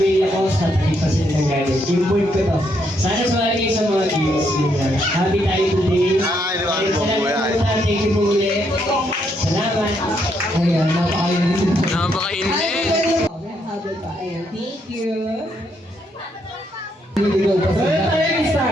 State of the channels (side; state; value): both; normal; correlation 0.75